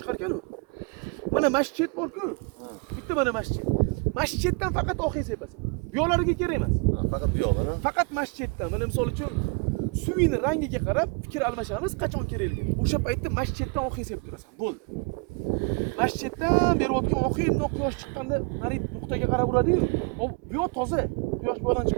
ekan-u. Mana masjid bor-ku. Bitta mana masjid. Masjiddan faqat oqing sepasan. Bu yo'llarga kerak emas. Faqat bu yo'qmi? Faqat masjiddan. Mana misol uchun suvini rangiga qarab fikr almashamiz, qachon kerakligi. O'sha paytda masjiddan oqing sepib turasan. Bo'ldi. Masjiddan berayotgan oqing quyosh chiqqanda mana nuqtaga qarab uradi-yu. Bu yo'q toza. Quyosh bu yoqdan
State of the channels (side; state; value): left; quieter; 31.9 dB